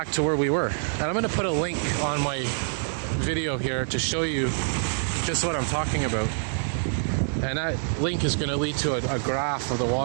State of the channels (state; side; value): silent; left; digital silence